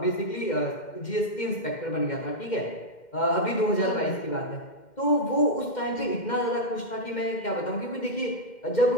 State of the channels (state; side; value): late; right; 2.1 ms